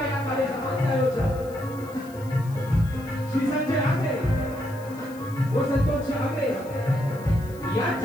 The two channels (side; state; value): left; noise; hiss, 23 dB below the sound